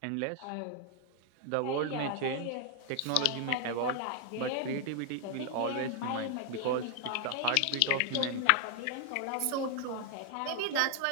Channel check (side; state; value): both; different; correlation 0.00